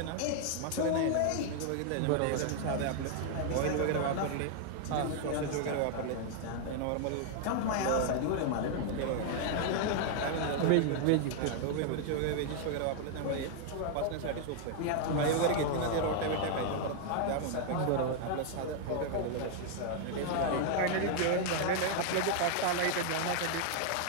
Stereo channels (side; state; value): both; different; correlation 0.00